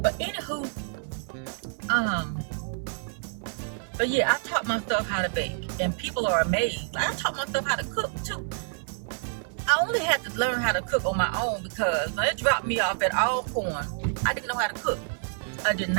anywho, but yeah, I taught myself how to bake, and people are amazed. I taught myself how to cook too. I only had to learn how to cook on my own because when it dropped me off at Alcorn, I didn't know how to cook. I did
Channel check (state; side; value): silent; left; digital silence